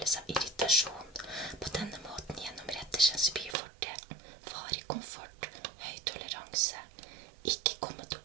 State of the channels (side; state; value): left; drops out; at 3.6 s